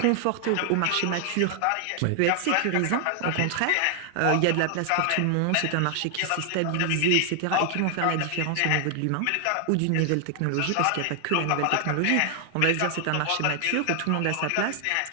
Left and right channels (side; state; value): both; different; correlation 0.00